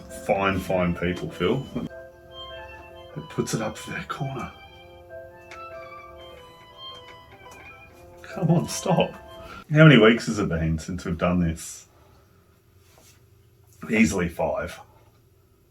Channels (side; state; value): both; identical; correlation 1.00